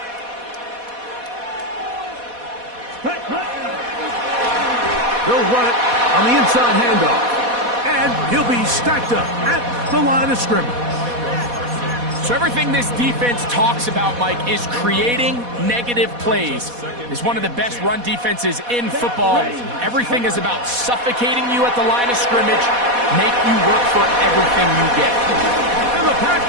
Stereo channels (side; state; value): left; late; 4.1 ms